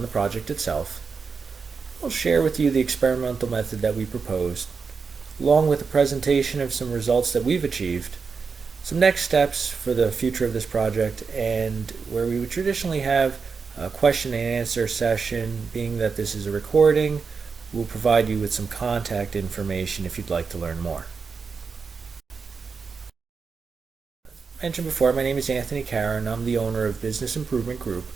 the project itself. We'll share with you the experimental method that we proposed, along with a presentation of some results that we've achieved, some next steps for the future of this project, and where we would traditionally have a question and answer session. Being that this is a recording, we'll provide you with some contact information if you'd like to learn more. As mentioned before, my name is Anthony Cara, and I'm the owner of Business Improvement Group.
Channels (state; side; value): quieter; left; 5.2 dB